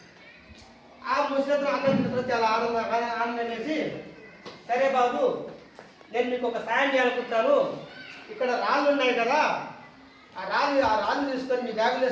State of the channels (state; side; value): identical; both; correlation 1.00